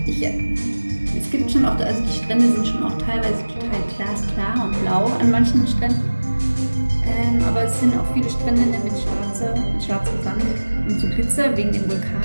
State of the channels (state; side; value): inverted; both; correlation -1.00